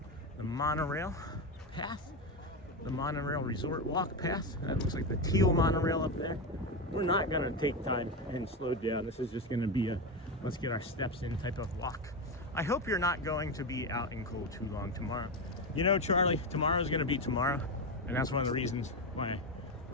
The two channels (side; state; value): both; normal; correlation 0.13